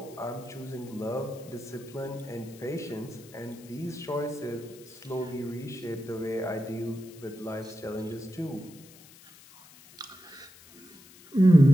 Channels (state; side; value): noise; left; hiss, 22 dB below the sound